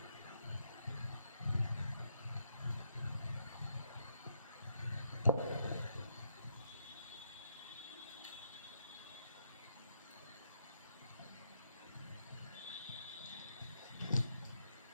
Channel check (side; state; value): both; inverted; correlation -0.77